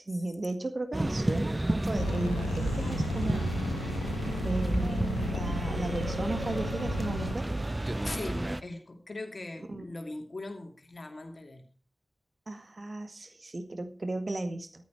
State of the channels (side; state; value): both; normal; correlation 0.91